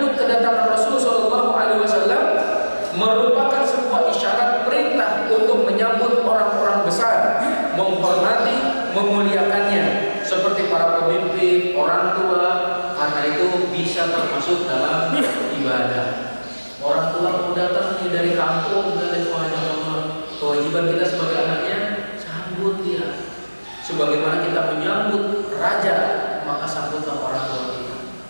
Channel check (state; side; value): inverted; both; correlation -1.00